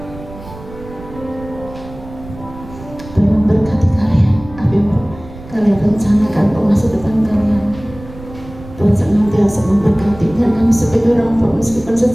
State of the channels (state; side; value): noise; right; rumble, 16 dB below the sound